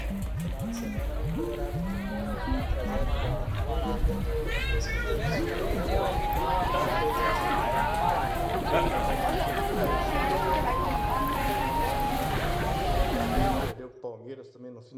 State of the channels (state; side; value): identical; both; correlation 1.00